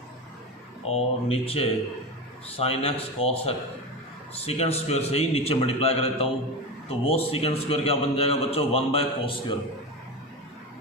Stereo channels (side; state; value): both; normal; correlation 0.21